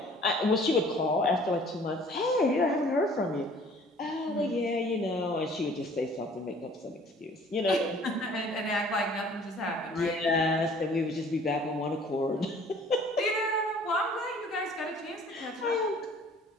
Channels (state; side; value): normal; both; correlation 0.53